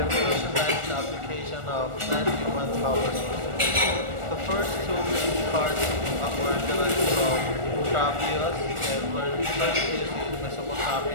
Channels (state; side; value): late; left; 1.4 ms